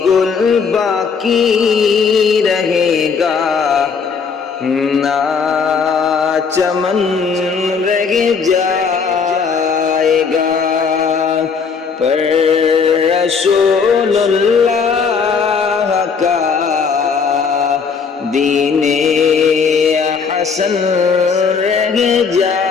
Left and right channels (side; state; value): right; quieter; 5.7 dB